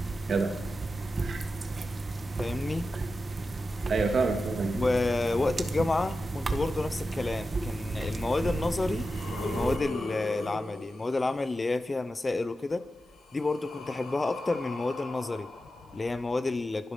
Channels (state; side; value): normal; both; correlation 0.91